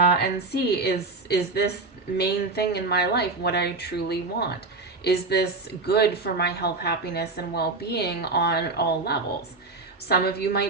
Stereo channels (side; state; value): left; quieter; 3.5 dB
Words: see, is this main thing in my life what I truly want? Is this good for my health, happiness, and well-being on all levels? Some of you